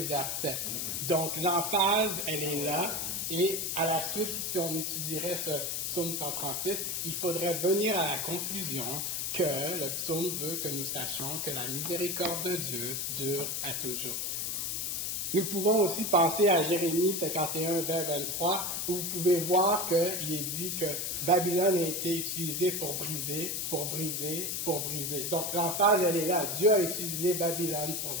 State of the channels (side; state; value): left; noise; hiss, 1 dB below the sound